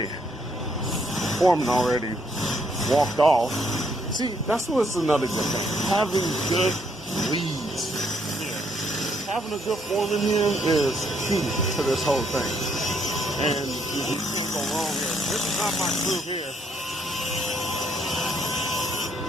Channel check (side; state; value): both; normal; correlation 0.71